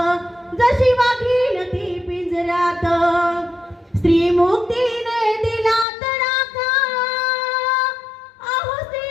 जशी वाघीण ती पिंजऱ्यात. स्त्री मुक्तीने दिला तडाखा, अहो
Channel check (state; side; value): drops out; right; at 5.9 s